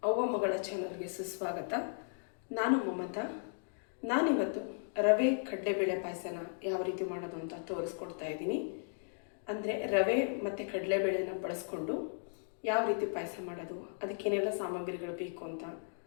ಅವ್ವ ಮಗಳ ಚಾನಲ್ಗೆ ಸುಸ್ವಾಗತ. ನಾನು ಮಮತಾ. ನಾನಿವತ್ತು ರವೆ ಕಡಲೆಬೇಳೆ ಪಾಯಸನ ಯಾವ ರೀತಿ ಮಾಡೋದು ಅಂತ ತೋರಿಸ್ಕೊಡ್ತಾ ಇದ್ದೀನಿ. ಅಂದರೆ ರವೆ ಮತ್ತು ಕಡಲೆಬೇಳೆನ ಬಳಸ್ಕೊಂಡು ಯಾವ ರೀತಿ ಪಾಯಸ ಮಾಡೋದು, ಅದಕ್ಕೇನೆಲ್ಲ ಸಾಮಗ್ರಿಗಳು ಬೇಕು ಅಂತ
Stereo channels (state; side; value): silent; right; digital silence